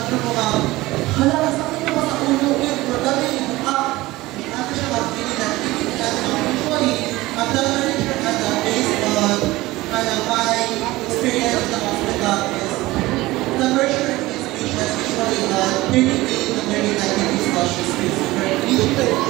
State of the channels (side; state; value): left; quieter; 19.0 dB